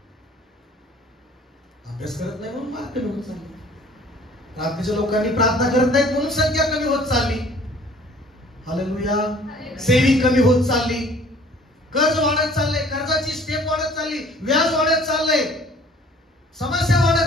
अभ्यास करत नाही म्हणून मार्क कमी होत चालले. प्रार्थनेच्या लोकांनी प्रार्थना करत नाहीत म्हणून संख्या कमी होत चालली. हालेलुया. सेविंग कमी होत चालली. कर्ज वाढत चाललंय, कर्जाची स्टेप वाढत चालली, व्याज वाढत चाललंय, समस्या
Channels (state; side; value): normal; both; correlation 0.52